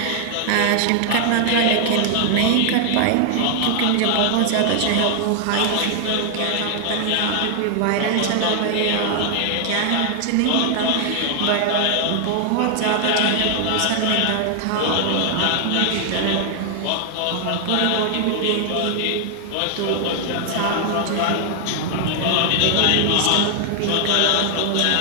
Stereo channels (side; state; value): both; different; correlation 0.00